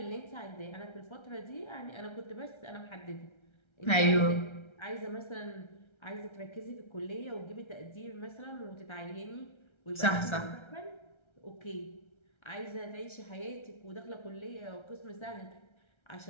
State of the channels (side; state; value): right; late; 1.3 ms